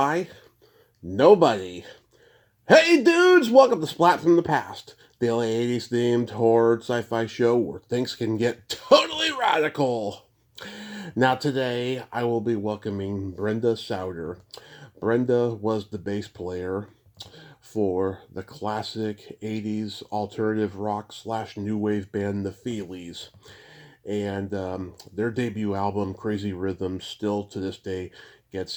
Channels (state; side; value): identical; both; correlation 1.00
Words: nobody. Hey dudes, welcome to Splat from the Past, the LA 80s themed horror sci-fi show where things can get totally radical. Now today I will be welcoming Brenda Sauter. Brenda was the bass player for the classic 80s alternative rock / new wave band the Feelies. And their debut album, Crazy Rhythms, still to this day gets